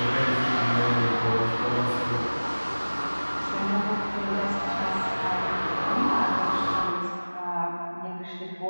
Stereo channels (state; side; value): inverted; both; correlation -1.00